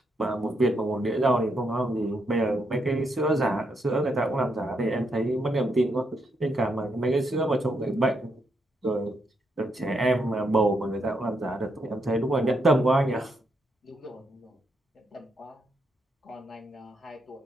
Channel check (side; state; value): both; normal; correlation 0.79